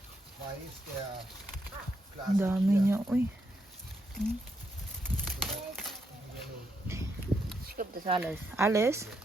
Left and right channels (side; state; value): both; normal; correlation 0.80